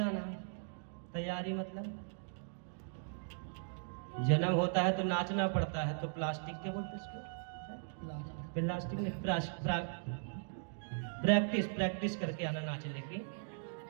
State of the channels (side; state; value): left; silent; digital silence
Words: तैयारी मतलब जन्म होता है तो नाचना पड़ता है, तो प्लास्टिक के बोलते इसको, प्लास्टिक में प्रैक्टिस करके आना नाच लेके।